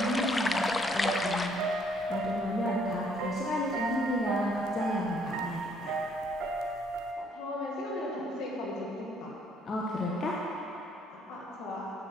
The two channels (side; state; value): both; normal; correlation 0.65